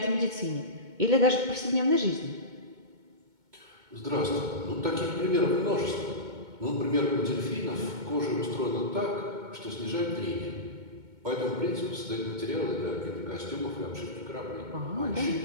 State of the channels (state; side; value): late; left; 2.2 ms